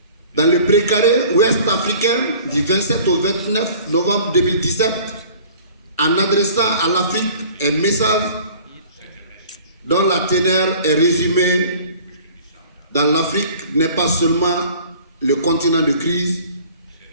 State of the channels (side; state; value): both; inverted; correlation -0.48